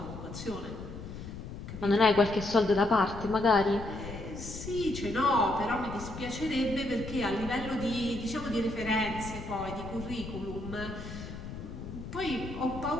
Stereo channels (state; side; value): noise; left; rumble, 10 dB below the sound